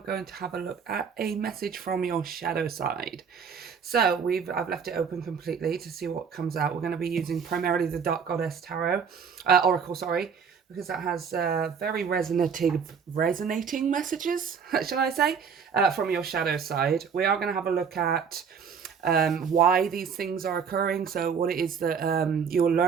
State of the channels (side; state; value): left; quieter; 6.6 dB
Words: to have a look at a message from your shadow side. So I've left it open completely to see what comes out. We're going to be using primarily the Dark Goddess Tarot, Oracle, sorry, because that has very resonating messages, shall I say, from your shadow side. We are going to have a look at why these things are occurring, so what it is that you're